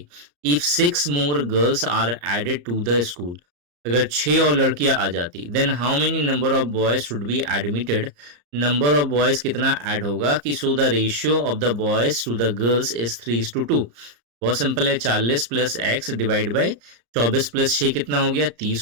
If 6 more girls are added to the school, अगर 6 और लड़कियां आ जाती, then how many number of boys should be admitted, number of boys कितना ऐड होगा कि so the ratio of the boys to the girls is 3:2। बहुत simple है, 40 plus x divide by 24 plus 6 कितना हो गया,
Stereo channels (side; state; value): left; late; 34 ms